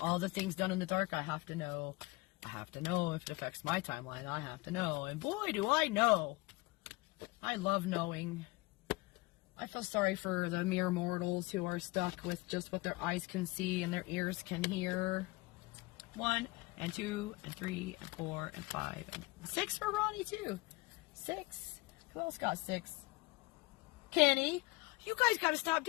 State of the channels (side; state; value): right; quieter; 22.7 dB